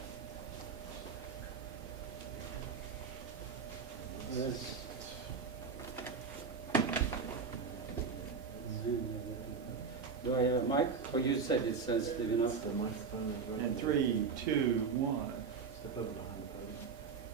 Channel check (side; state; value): left; quieter; 5.4 dB